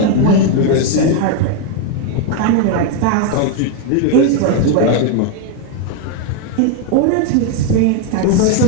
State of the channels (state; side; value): different; both; correlation 0.01